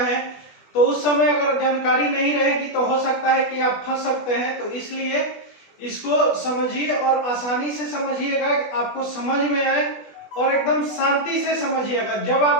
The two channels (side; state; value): right; late; 20 ms